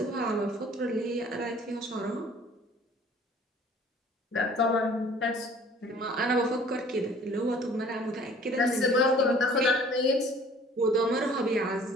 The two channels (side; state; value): both; normal; correlation 0.52